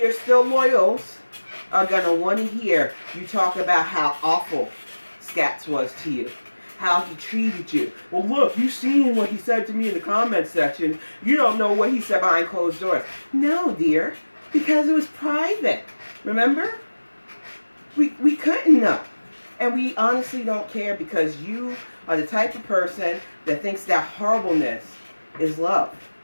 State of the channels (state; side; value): inverted; both; correlation -1.00